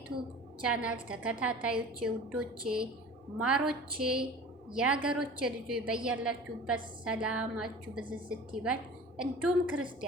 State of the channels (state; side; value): normal; both; correlation 0.40